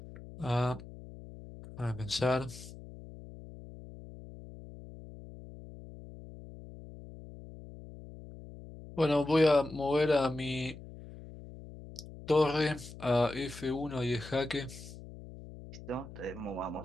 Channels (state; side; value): noise; left; hum, 15 dB below the sound